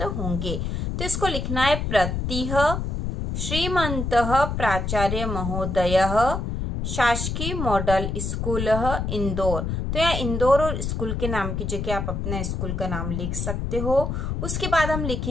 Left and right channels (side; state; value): left; noise; rumble, 2 dB below the sound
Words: होंगे। तो इसको लिखना है प्रतिह श्रीमन्तः प्राचार्य महोदयः शासकीय मॉडल स्कूल इंदौर। तो यहाँ इंदौर और स्कूल के नाम की जगह आप अपना स्कूल का नाम लिख सकते हो। उसके बाद हम